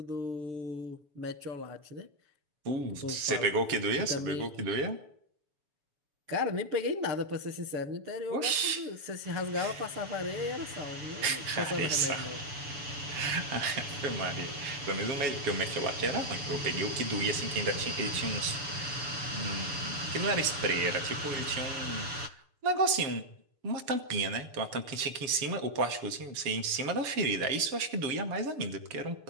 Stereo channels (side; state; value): left; late; 7.0 ms